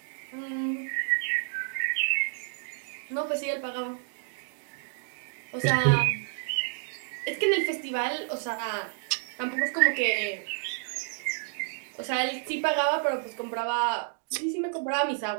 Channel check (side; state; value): left; silent; 58 dB below the other